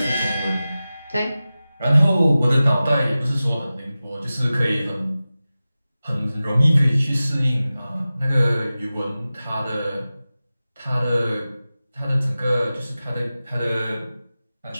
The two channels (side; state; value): both; inverted; correlation -0.96